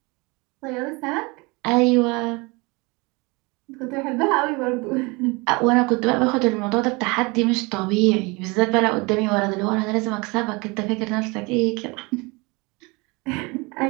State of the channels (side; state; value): left; quieter; 26.6 dB